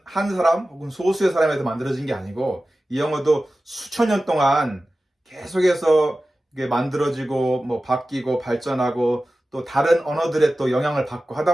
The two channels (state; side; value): normal; both; correlation 0.95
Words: 한 사람 혹은 소수의 사람에서 만들어진 게 아니고, 이 영어도 수천 년 동안 계속해서 이게 만들어지고 뭐 바뀌고 발전하고 또 다른 언어들의 또 영향을 받고